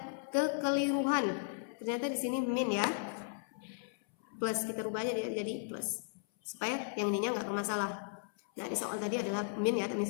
kekeliruan. Ternyata di sini min ya. Plus, kita rubah aja jadi plus. Supaya yang ininya nggak bermasalah. Nah, di soal tadi adalah min ya, tapi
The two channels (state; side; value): silent; right; 54 dB below the other